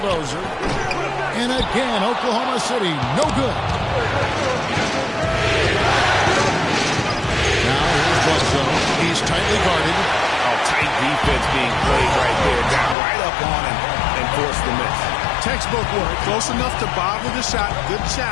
And again, Oklahoma City, no good. Now here's Bledsoe. He's tightly guarded. Tight defense being played right there. Got right up on him and forced the miss. Textbook work. Close enough to bother the shot. Good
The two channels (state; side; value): drops out; right; at 13.0 s